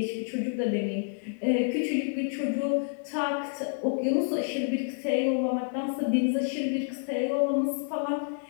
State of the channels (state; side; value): silent; right; digital silence